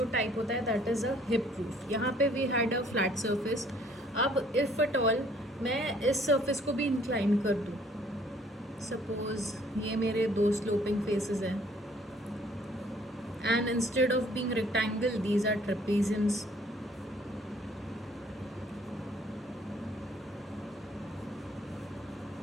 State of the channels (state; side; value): normal; both; correlation 0.60